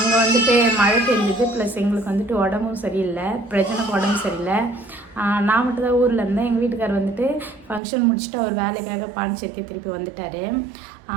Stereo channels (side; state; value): left; drops out; at 7.8 s